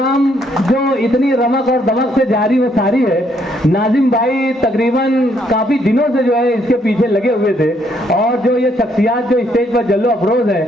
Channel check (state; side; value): normal; both; correlation 0.70